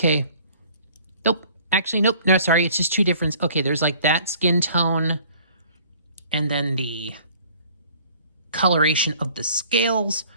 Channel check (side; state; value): both; inverted; correlation -0.53